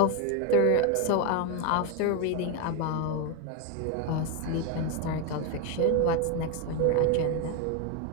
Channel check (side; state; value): both; different; correlation 0.02